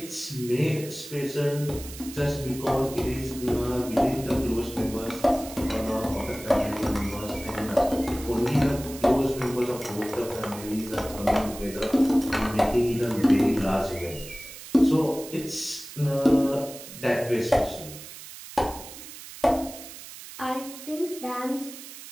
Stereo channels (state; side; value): noise; right; hiss, 14 dB below the sound